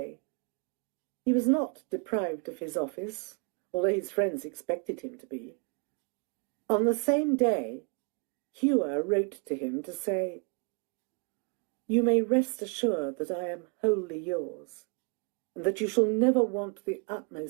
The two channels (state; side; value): quieter; left; 34.8 dB